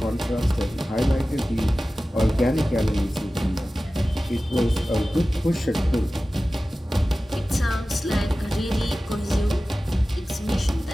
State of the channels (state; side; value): normal; both; correlation 0.96